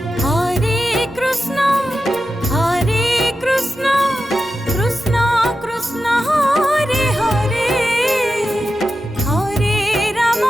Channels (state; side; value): normal; both; correlation 0.92